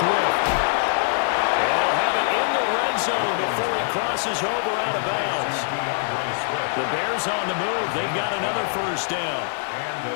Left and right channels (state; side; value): silent; right; digital silence